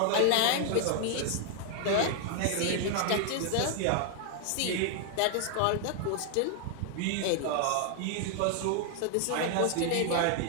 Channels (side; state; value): both; different; correlation 0.00